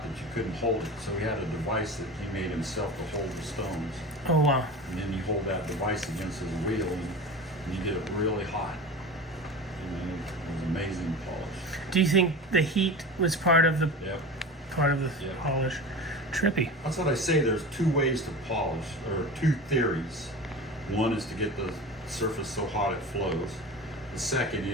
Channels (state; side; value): normal; both; correlation 0.31